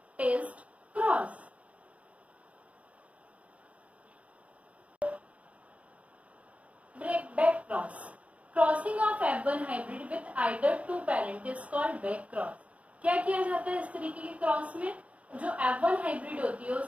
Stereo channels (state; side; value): late; left; 0.066 ms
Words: test cross. Back cross, crossing of F1 hybrid with either 2 parent is called back cross. क्या किया जाता है इस तरीके के क्रॉस में, जो F1 हाइब्रिड होती है